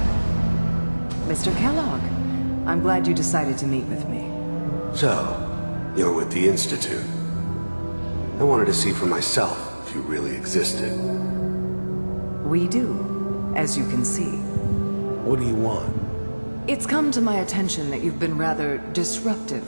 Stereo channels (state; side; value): inverted; both; correlation -1.00